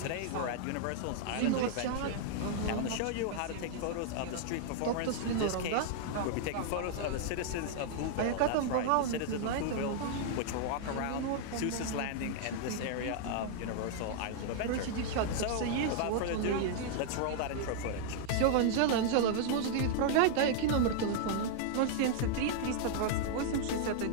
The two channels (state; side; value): different; both; correlation -0.01